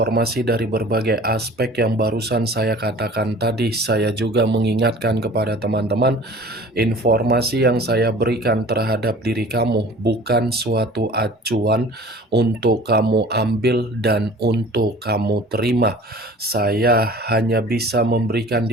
dari berbagai aspek yang barusan saya katakan tadi, saya juga mengingatkan kepada teman-teman, informasi yang saya berikan terhadap diri kamu bukan suatu acuan untuk kamu ambil dan untuk kamu terima. Saya hanya bisa memberikan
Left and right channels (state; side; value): normal; both; correlation 0.45